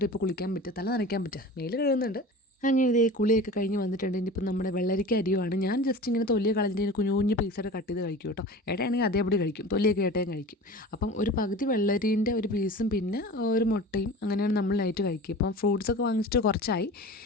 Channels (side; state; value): both; normal; correlation 0.36